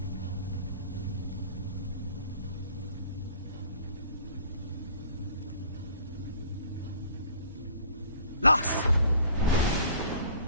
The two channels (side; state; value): both; inverted; correlation -0.51